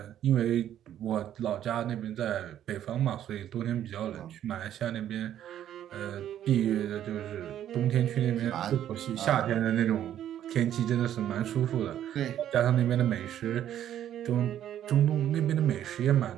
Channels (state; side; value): quieter; left; 11.0 dB